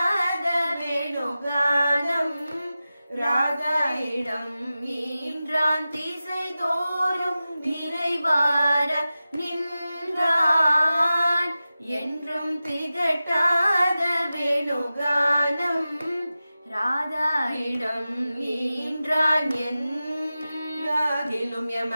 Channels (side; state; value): both; inverted; correlation -0.95